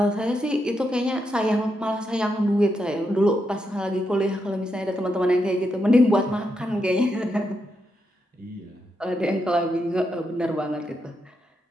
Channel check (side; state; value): both; normal; correlation 0.83